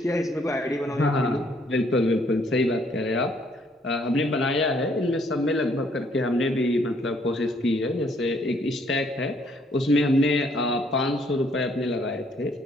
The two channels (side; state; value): both; normal; correlation 0.66